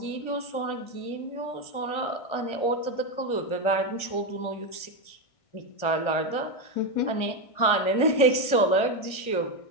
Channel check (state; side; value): late; right; 1.6 ms